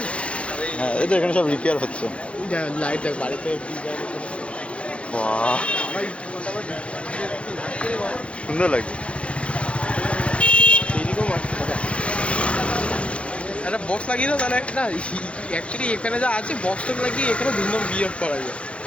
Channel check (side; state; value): right; late; 0.061 ms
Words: হ্যাঁ, এই তো এখানে সব রিপেয়ার হচ্ছে। লাইট দেখ বাড়িতে বাহ, সুন্দর লাগছে। একটা বক্স লাগিয়ে দাও তাহলে একটা অ্যাকচুয়ালি এখানে যা আছে বক্সটা লাগিয়ে এখানে ধুমধাম বিয়ে করা যায়।